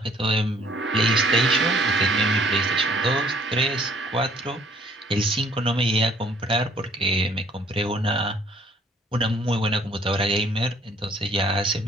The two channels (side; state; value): both; normal; correlation 0.59